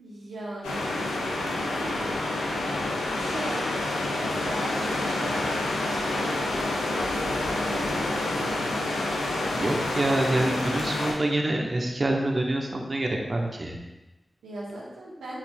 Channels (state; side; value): normal; both; correlation 0.89